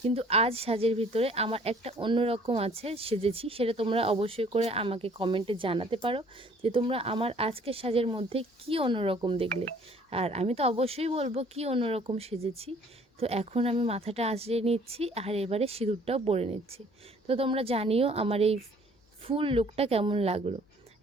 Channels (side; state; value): both; normal; correlation 0.57